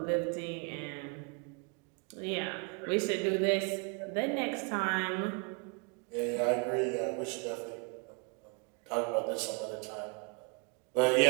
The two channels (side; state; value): left; quieter; 33.9 dB